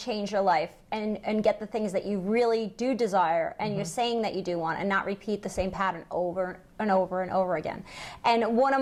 your life, and get the things that you really do desire, and you're saying that you do want, and not repeat the same pattern over and over and over again. And one of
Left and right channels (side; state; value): both; identical; correlation 1.00